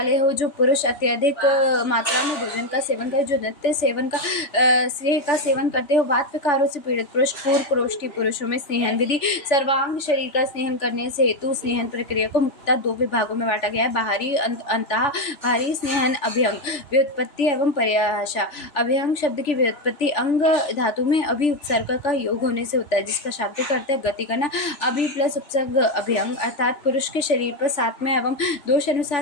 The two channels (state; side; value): late; right; 3.4 ms